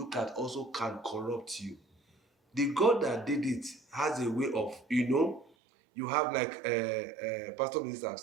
at also can corrupt you. The God that did it has a way of, you have like Pastor Minister have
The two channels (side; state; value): left; drops out; at 5.5 s